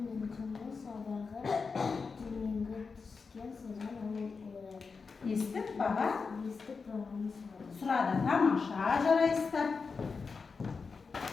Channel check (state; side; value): quieter; right; 4.9 dB